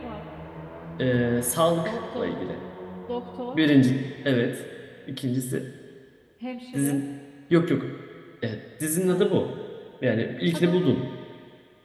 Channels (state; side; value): identical; both; correlation 1.00